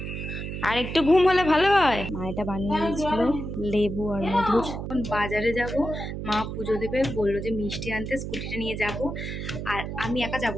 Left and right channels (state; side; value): noise; right; hum, 6 dB below the sound